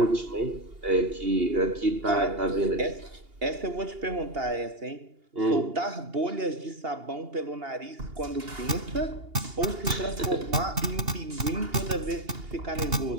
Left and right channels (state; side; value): late; left; 2.8 ms